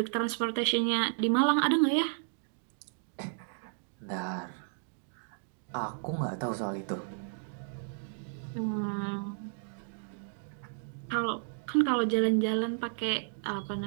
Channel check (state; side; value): silent; left; digital silence